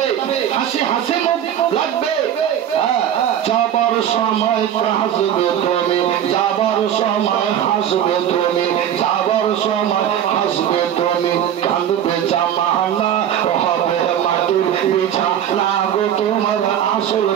হাসি হাসি মুখ লাগবে। যাবার সময় হাসবে তুমি যাবার সময় হাসবে তুমি যাবার সময় হাসবে তুমি কাঁদবে জামানা হবে মাটির বিছানা গো তোমার আসল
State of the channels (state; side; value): quieter; left; 10.0 dB